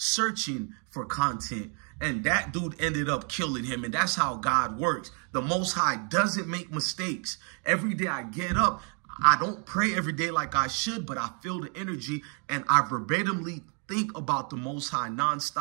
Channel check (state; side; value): quieter; left; 39.1 dB